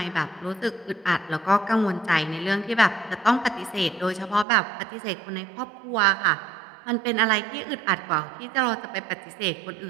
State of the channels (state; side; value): drops out; left; at 4.5 s